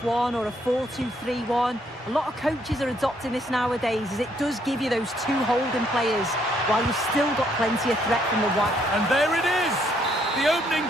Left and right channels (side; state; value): both; normal; correlation 0.70